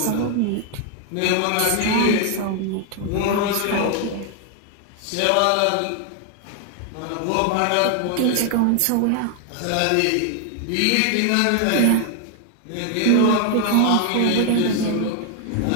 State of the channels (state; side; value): different; both; correlation 0.01